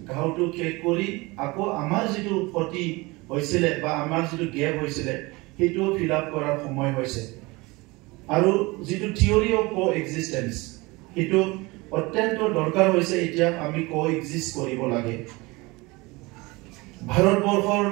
ঘাওটো শেষ কৰি আকৌ আমাৰ যিটো ক্ষতি হৈছিলে বা আমাৰ যিটো গেপ হৈছিলে, সেইটোও ফিল আপ কৰাৰ সময় হৈছে। আৰু যিটো থিয়ৰি অফ কো এক্সিষ্টেঞ্চ, সেইটো অত্যন্ত দৰকাৰ হৈছে। এতিয়া আমি কো এক্সিষ্ট কৰিব লাগে। ভাৰতবৰ্ষৰ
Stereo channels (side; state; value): left; quieter; 23.6 dB